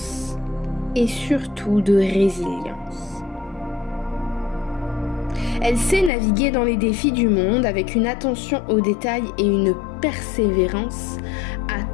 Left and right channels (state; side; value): drops out; right; at 6.1 s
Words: et surtout de résilience. Elle sait naviguer dans les défis du monde avec une attention aux détails et une persévérance à